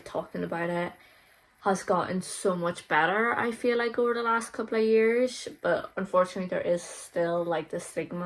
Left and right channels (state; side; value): identical; both; correlation 1.00